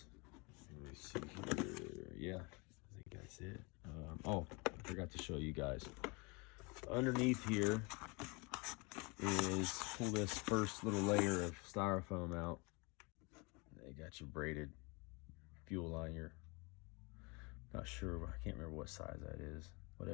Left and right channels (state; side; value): quieter; right; 28.9 dB